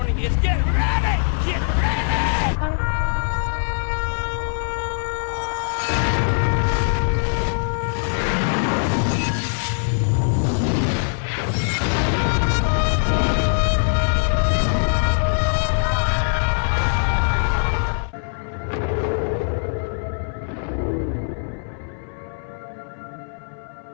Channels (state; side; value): silent; right; 60 dB below the other